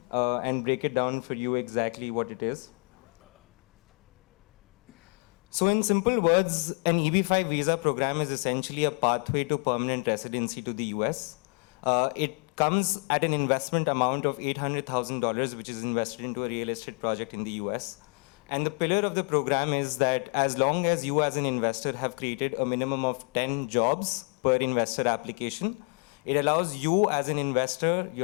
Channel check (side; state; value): right; quieter; 36.2 dB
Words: and break it down for you exactly what it is. So in simple words, an EB-5 visa program is essentially a pathway to permanent residency to the US. It comes at an investment amount of $800,000, which is invested into a real estate project in the US. And the pillar of the program is that as long as you as an investor have created a minimum of 10 jobs per investor application, it allows you as an investor,